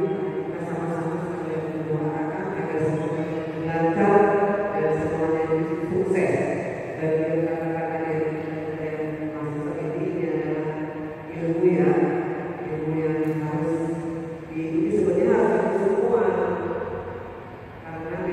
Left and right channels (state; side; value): identical; both; correlation 1.00